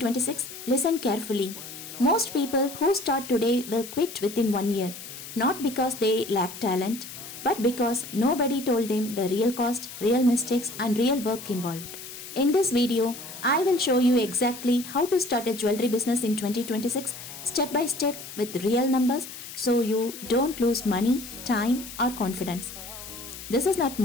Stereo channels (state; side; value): noise; left; hiss, 12 dB below the sound